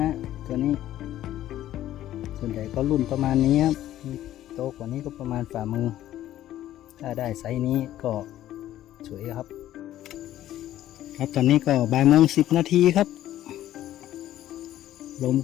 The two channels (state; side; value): quieter; right; 13.1 dB